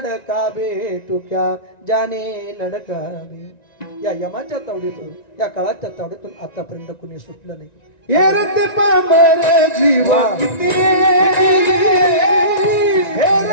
बे. तू क्या जाने लड़का बे. या यमाच्या तावडीतून, या काळाच्या तावडीतून आतापर्यंत कुणी सुटलं नाही. हे रते पामर जीव किती, हे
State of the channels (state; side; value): late; right; 1.9 ms